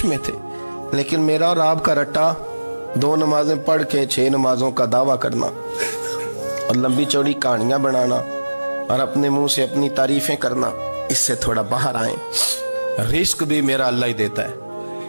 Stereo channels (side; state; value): both; inverted; correlation -1.00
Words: میں تھے. لیکن میرا اور آپ کا رٹا 2 نمازیں پڑھ کے 6 نمازوں کا دعویٰ کرنا اور لمبی چوڑی کہانیاں بنانا اور اپنے منہ سے اپنی تعریفیں کرنا، اس سے تھوڑا باہر آئیں. رزق بھی میرا اللہ ہی دیتا ہے،